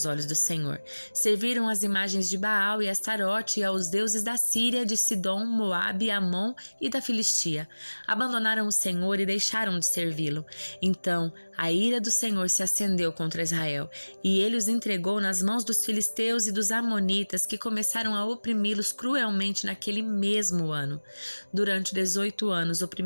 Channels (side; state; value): both; inverted; correlation -1.00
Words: olhos do Senhor. Serviram as imagens de Baal e Astarote e aos deuses da Síria, de Sidom, Moabe, Amon e da Filistia. Abandonaram o Senhor e deixaram de servi-lo. Então, a ira do Senhor se acendeu contra Israel, e ele os entregou nas mãos dos filisteus e dos amonitas, que começaram a oprimi-los cruelmente naquele mesmo ano. Durante 18 anos,